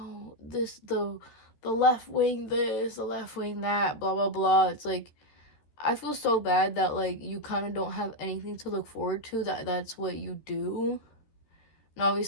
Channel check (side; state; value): right; late; 13 ms